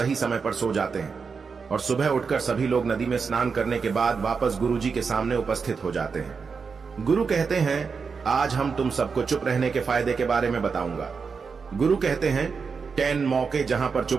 समय पर सो जाते हैं और सुबह उठकर सभी लोग नदी में स्नान करने के बाद वापस गुरुजी के सामने उपस्थित हो जाते हैं। गुरु कहते हैं, आज हम तुम सबको चुप रहने के फायदे के बारे में बताऊंगा। गुरु कहते हैं, 10 मौके जहां पर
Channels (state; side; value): quieter; left; 5.4 dB